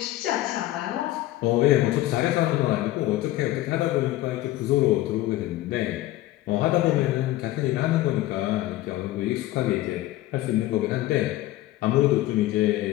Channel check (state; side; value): quieter; right; 16.0 dB